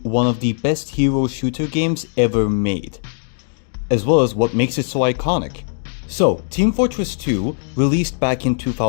one of the best hero shooter games ever made, as well as what makes it so iconic. So, Team Fortress 2 released back in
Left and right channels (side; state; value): right; silent; digital silence